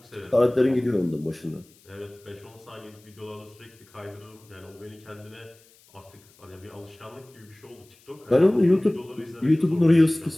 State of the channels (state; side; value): noise; left; hiss, 29 dB below the sound